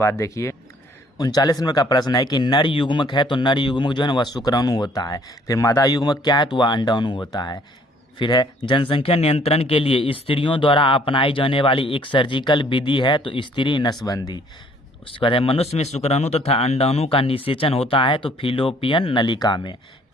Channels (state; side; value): normal; both; correlation 0.60